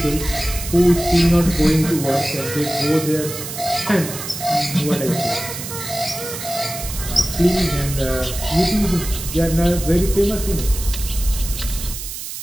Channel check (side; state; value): right; noise; hiss, 8 dB below the sound